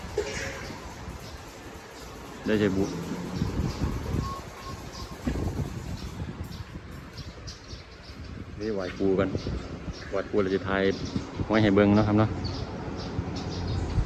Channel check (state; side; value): identical; both; correlation 1.00